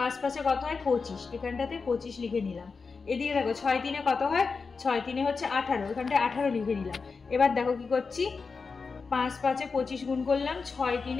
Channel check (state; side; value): quieter; right; 4.8 dB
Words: 5-এ কত হয় 25, এখানটাতে 25 লিখে নিলাম। এদিকে দেখো 6 3-এ কত হয়, 6 3-এ হচ্ছে 18, এখানটায় 18 লিখে নিলাম। এবার দেখো কি করছি, 5 5-এ 25 গুণ করলাম, 6